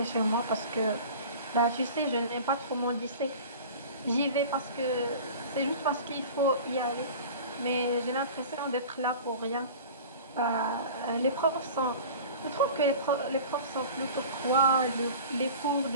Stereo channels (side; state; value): both; inverted; correlation -0.38